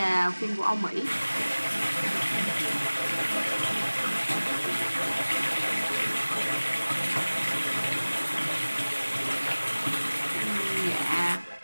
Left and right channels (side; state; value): both; inverted; correlation -1.00